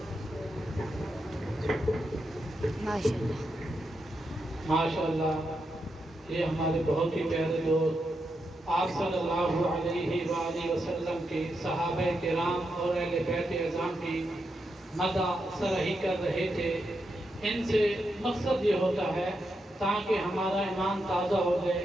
ماشاء اللہ. ماشاءاللہ. یہ ہمارے بہت ہی پیارے دوست آپ صلی اللہ علیہ وآلہ وسلم کے صحابہ کرام اور اہل بیت اعظام کی مدح سرہی کر رہے تھے. ان سے مقصد یہ ہوتا ہے تاکہ ہمارا ایمان تازہ ہو جائے.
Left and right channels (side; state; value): both; normal; correlation 0.84